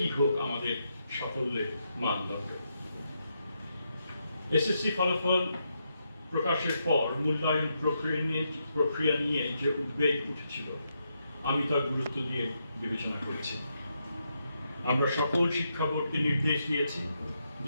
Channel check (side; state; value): both; inverted; correlation -0.81